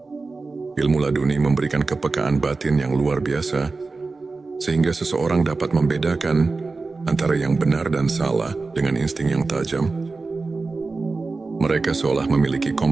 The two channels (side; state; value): left; quieter; 3.9 dB